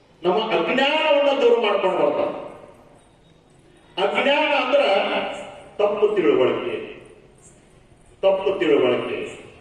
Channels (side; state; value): both; identical; correlation 1.00